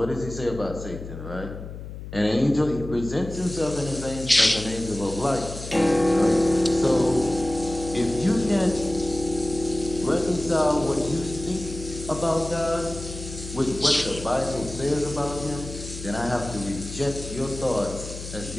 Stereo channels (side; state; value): left; noise; hum, 10 dB below the sound